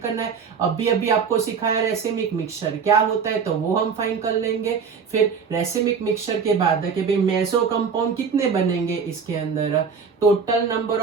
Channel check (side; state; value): left; quieter; 6.0 dB